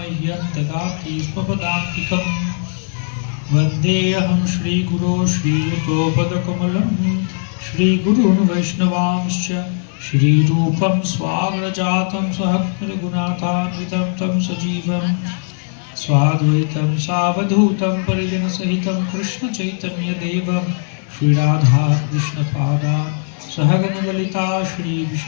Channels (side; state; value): right; silent; digital silence